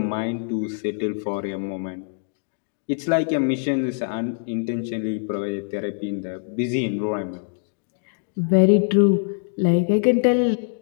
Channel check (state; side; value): silent; right; digital silence